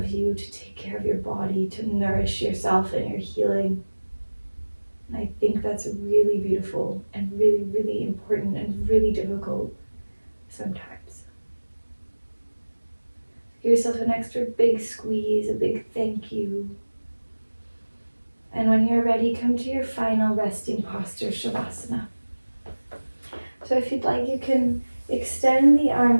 you, to take care of your body, to nourish yourself and your healing. And I think that's really beautiful and really, really important and really difficult sometimes. Give yourself an extra big squeeze, a big thank you. And when you're ready, come to your final resting posture, Shavasana. So if you'd like, you can extend the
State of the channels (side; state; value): both; inverted; correlation -1.00